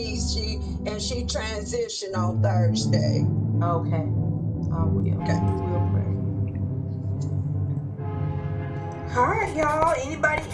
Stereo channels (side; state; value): both; identical; correlation 1.00